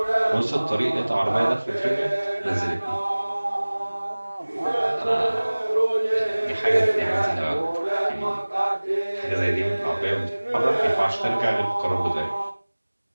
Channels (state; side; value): inverted; both; correlation -1.00